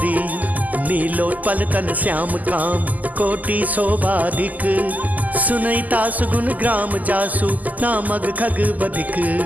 नीलोत्पल तन श्याम काम, कोटि शोभाधिक। सुनहि तासु गुण ग्राम जासु, नामग खग बधिक।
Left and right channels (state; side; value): late; left; 0.080 ms